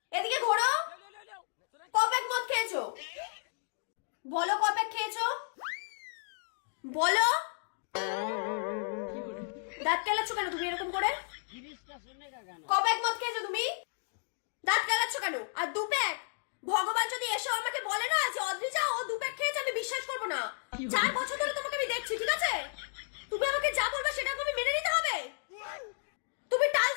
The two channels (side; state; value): right; silent; digital silence